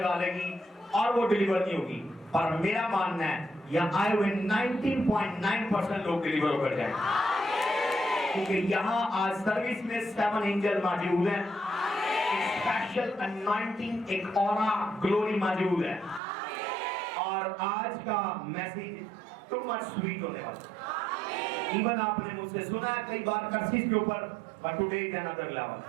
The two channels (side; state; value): left; drops out; at 16.2 s